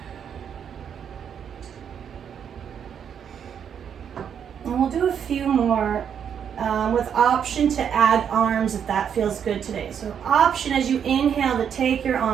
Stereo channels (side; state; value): left; quieter; 8.1 dB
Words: And we'll do a few more with option to add arms if that feels good today. So option as you inhale to take your